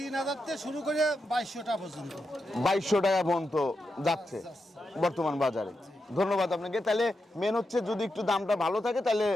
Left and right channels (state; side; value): normal; both; correlation 0.87